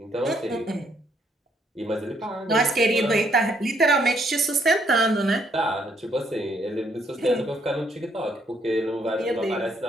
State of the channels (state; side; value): normal; both; correlation 0.70